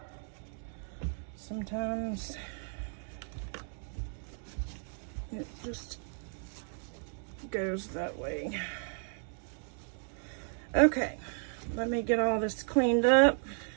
sometimes it just goes that way. Okay, let me get all this cleaned up.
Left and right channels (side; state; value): left; silent; 55 dB below the other